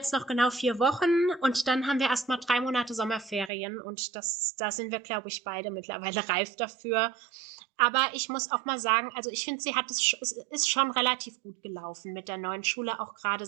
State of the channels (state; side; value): drops out; left; at 3.5 s